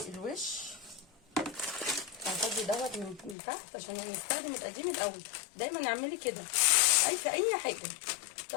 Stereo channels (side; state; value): right; drops out; at 3.4 s